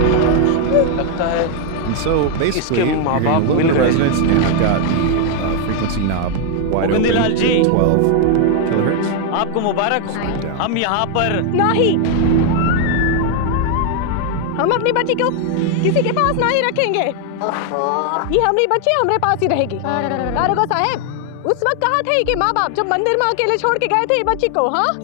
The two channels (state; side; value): different; both; correlation 0.00